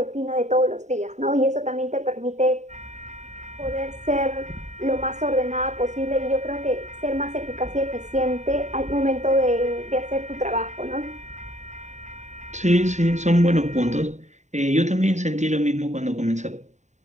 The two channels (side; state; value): left; late; 0.34 ms